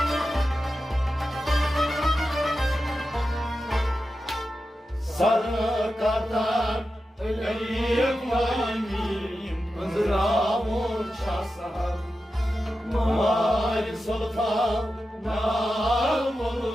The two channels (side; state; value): both; normal; correlation 0.91